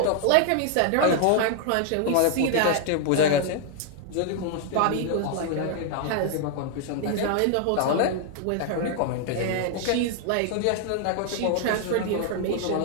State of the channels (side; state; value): both; different; correlation 0.00